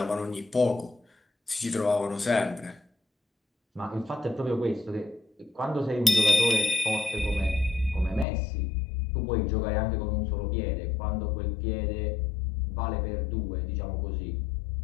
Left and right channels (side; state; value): right; drops out; at 8.2 s